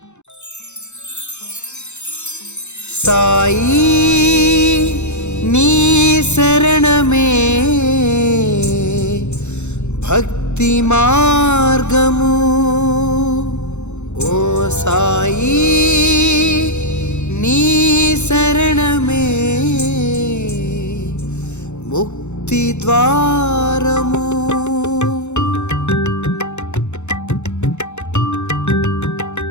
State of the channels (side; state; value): right; late; 0.83 ms